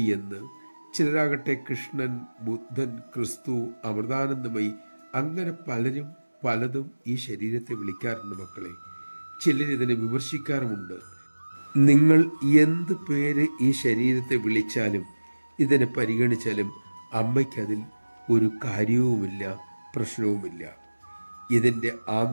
എന്ന്, ചിലരാകട്ടെ കൃഷ്ണൻ, ബുദ്ധൻ, ക്രിസ്തു, അമൃതാനന്ദമയി, അങ്ങനെ പലരും പലതും ഈ ശരീരത്തെ വിളിക്കാറുണ്ട് മക്കളെ. ചിലരിതിനെ വിമർശിക്കാറുമുണ്ട്. നിങ്ങൾ എന്ത് പേര് ഈ ശരീരത്തെ വിളിച്ചാലും ഇതിനെ പരിഗണിച്ചാലും അമ്മയ്ക്കതിൽ ഒരു കാര്യവുമില്ല, പ്രശ്നവുമില്ല. ഇതിൻ്റെ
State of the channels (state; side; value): inverted; both; correlation -1.00